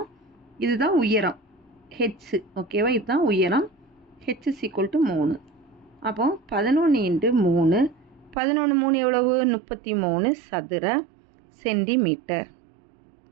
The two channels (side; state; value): left; drops out; at 8.3 s